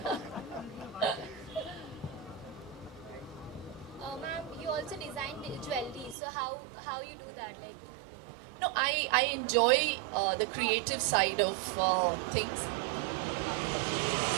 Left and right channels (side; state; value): left; drops out; at 6.2 s